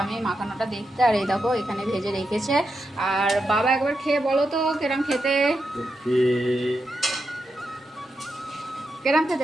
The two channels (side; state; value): both; normal; correlation 0.86